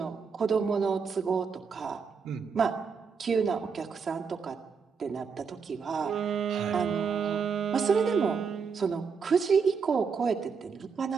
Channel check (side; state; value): left; quieter; 5.7 dB